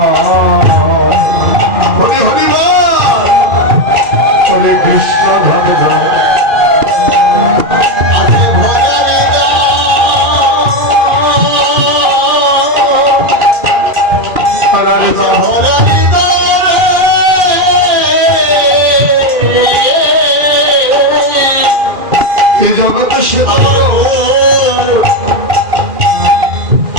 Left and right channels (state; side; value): late; left; 2.4 ms